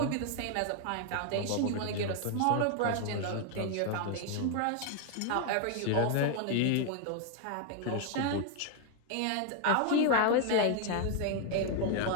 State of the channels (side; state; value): both; different; correlation 0.00